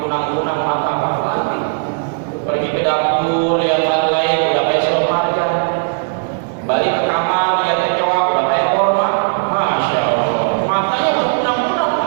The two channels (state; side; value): silent; left; 62 dB below the other